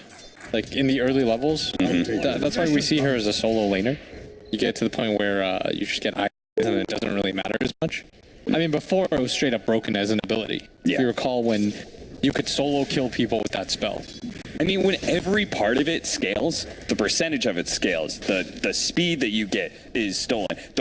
Like, in the early levels, that's why we see her as a solo laner. You get to the point where you just get items and it doesn't really matter as much. I mean, before it was straight up broken as an ability. Yeah. If you recall when you could solo kill people with that spell. I mean, when every part of it scales, the percentage of it scales, the speed that you get is stolen,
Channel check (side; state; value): both; identical; correlation 1.00